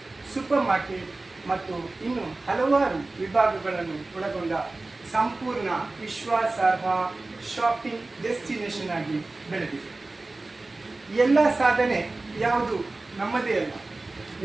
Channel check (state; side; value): quieter; left; 3.2 dB